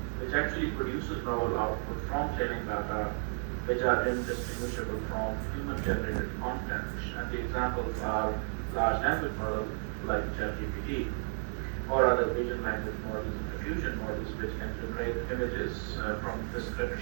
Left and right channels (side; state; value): left; silent; 55 dB below the other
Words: which actually produces novel output from training data, which are indistinguishable from human-generated content. And the examples are large language models like ChatGPT, or other vision language models and diffusion models, which can generate images from